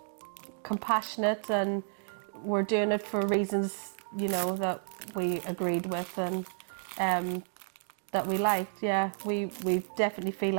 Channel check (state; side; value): silent; left; 57 dB below the other